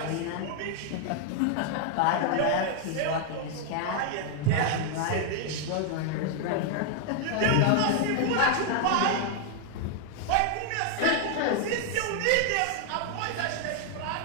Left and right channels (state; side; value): different; both; correlation 0.00